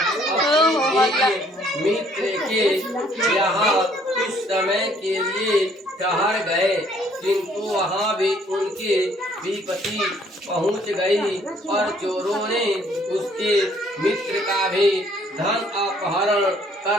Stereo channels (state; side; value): normal; both; correlation 0.62